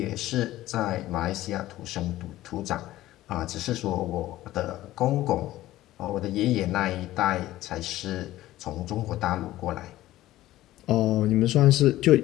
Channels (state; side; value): quieter; right; 15.4 dB